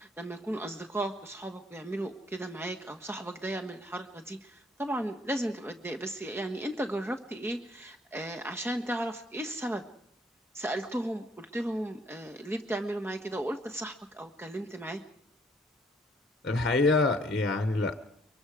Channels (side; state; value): both; normal; correlation 0.65